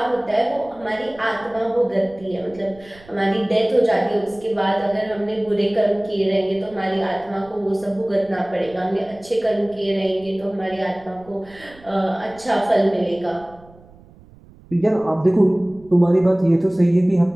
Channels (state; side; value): noise; right; rumble, 24 dB below the sound